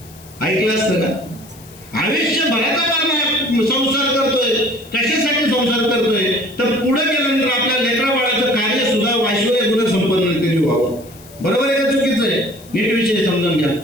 ऐकलं असतं का? आयुष्यभराचा संसार करतोय, कशासाठी संसार करतोय? तर पुढे गेल्यानंतर आपल्या लेकरा बाळाचं कार्य सुद्धा ऐश्वर्य गुण संपन्न व्हावं. बरोबर आहे का चुकीचं आहे? नीट विषय समजून घ्या.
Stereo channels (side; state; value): left; noise; hiss, 22 dB below the sound